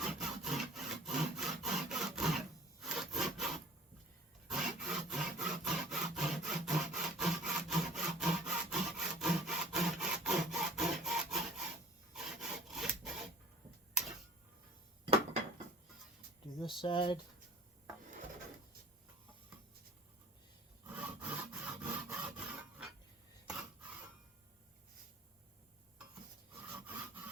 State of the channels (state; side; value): normal; both; correlation 0.46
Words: Do this side.